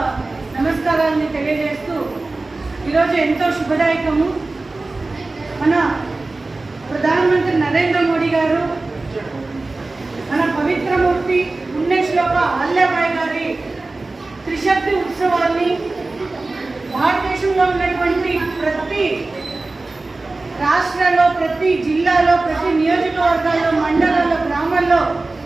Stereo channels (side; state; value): left; quieter; 3.3 dB